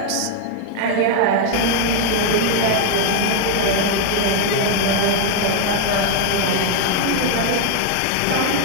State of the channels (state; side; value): different; both; correlation 0.00